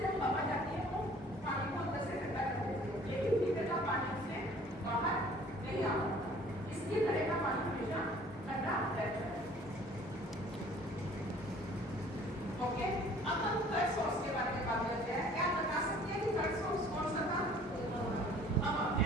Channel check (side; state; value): both; normal; correlation 0.53